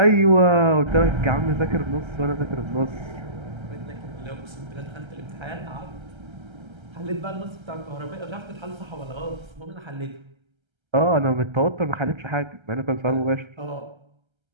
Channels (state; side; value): late; left; 1.3 ms